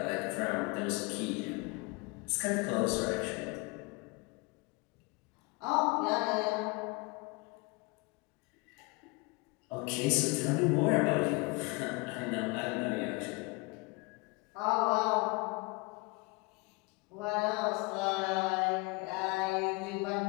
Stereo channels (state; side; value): quieter; right; 27.4 dB